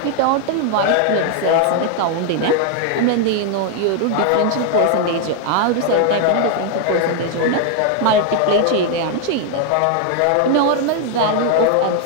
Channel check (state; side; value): different; both; correlation 0.00